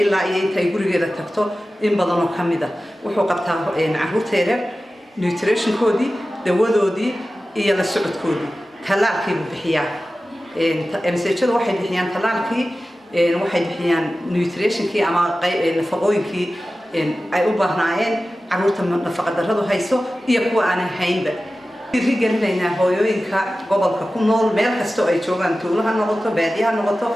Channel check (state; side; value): normal; both; correlation 0.95